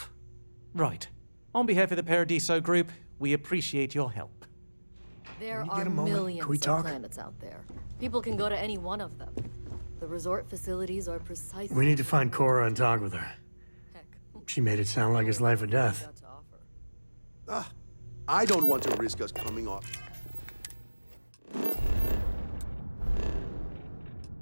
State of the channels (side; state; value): both; inverted; correlation -1.00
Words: Right. On behalf of the Paradiso Group, we appreciate your help. There you are get a moment? millions Can we of talk? planets out there. People can go to any one of them. The resort facilities are precisely... We need to find Cora and talk with her. Heck, She made it sound like it's life or death. got to offer. I don't want to risk us coming off.